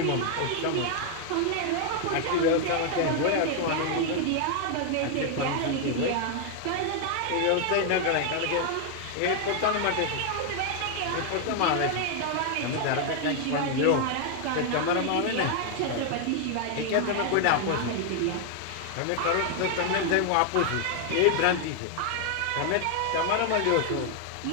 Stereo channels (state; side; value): different; both; correlation 0.00